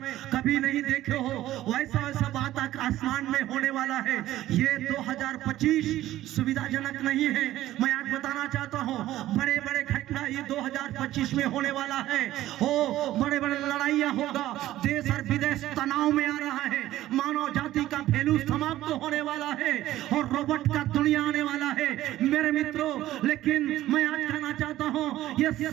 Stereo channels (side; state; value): left; quieter; 14.5 dB